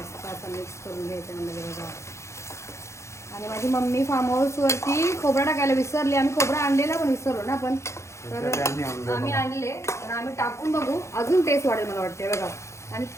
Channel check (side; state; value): right; late; 0.14 ms